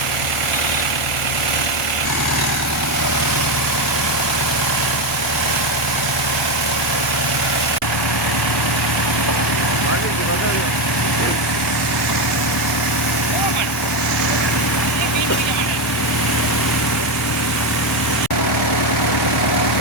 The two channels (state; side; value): normal; both; correlation 0.10